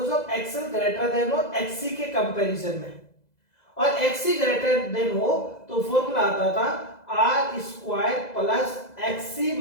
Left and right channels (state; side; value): late; right; 2.0 ms